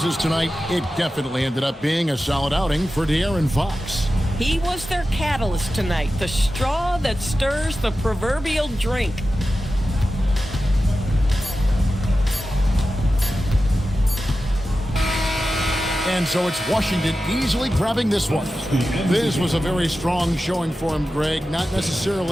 tonight, it definitely ended up being a solid outing for De'Aaron Fox. He was their catalyst tonight, the straw that stirs the proverbial drink. And so it's Washington easily grabbing this one. This was a very strong showing for him, Greg. Not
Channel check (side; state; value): both; normal; correlation 0.93